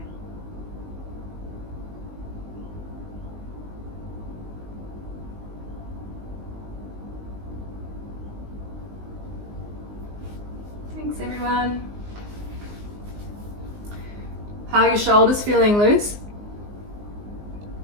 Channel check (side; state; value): left; late; 19 ms